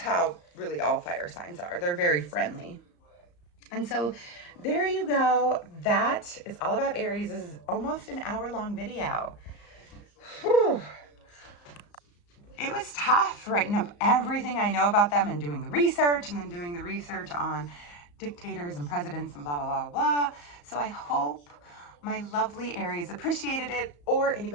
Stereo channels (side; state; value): right; late; 34 ms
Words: really all fire signs are. They're very friendly. And so there you go. That is all about Aries. This is almost an hour-long video. Whew. It was tough writing up everything I know about them and doing the research, and then doing the research on dictators and presidents and blah, blah, blah, blah. So I hope my lovely Aries appreciated it, or